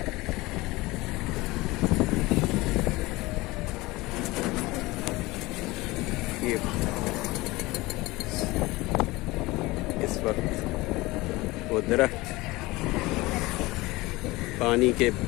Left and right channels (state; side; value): quieter; right; 21.0 dB